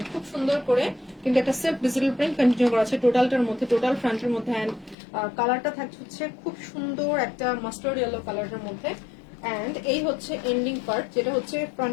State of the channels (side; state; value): right; drops out; at 5.0 s